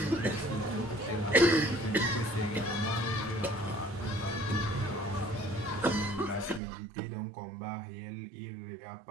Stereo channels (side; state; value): left; drops out; at 6.6 s